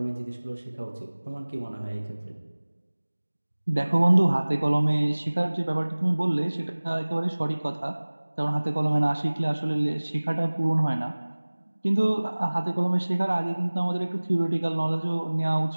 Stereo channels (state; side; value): inverted; both; correlation -1.00